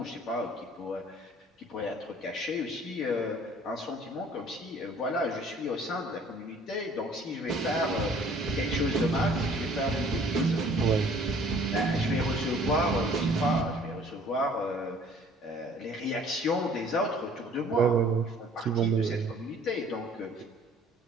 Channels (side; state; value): both; normal; correlation 0.54